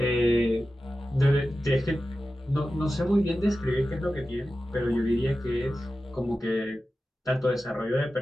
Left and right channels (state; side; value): normal; both; correlation 0.93